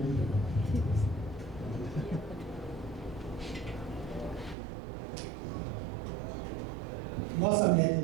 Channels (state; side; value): drops out; left; at 4.5 s